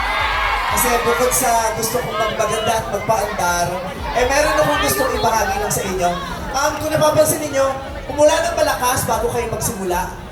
Kasi bukod sa gusto kong magpaganda at magpaandar, meron akong gustong ibahagi lang sa inyo. Kung napapansin ninyo, umulan ng malakas bago kayo magsimula.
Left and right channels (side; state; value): both; identical; correlation 1.00